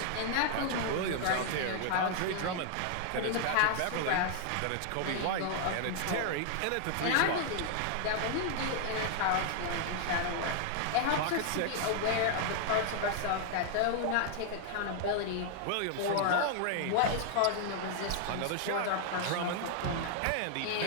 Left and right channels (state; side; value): different; both; correlation -0.01